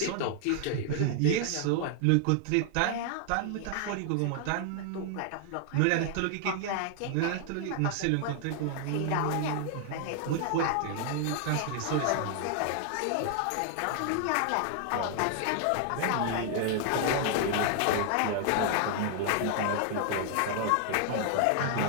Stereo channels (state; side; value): different; both; correlation 0.00